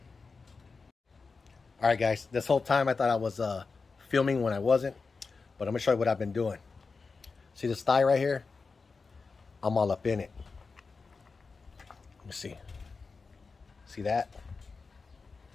All right, guys. This whole time I thought I was filming when I wasn't, but I'm gonna show you what I've been doing. See this thigh right here? I'm all up in it. Let me see. See that?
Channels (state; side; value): quieter; right; 4.5 dB